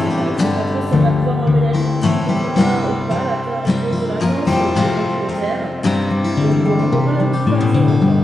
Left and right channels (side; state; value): both; normal; correlation 0.90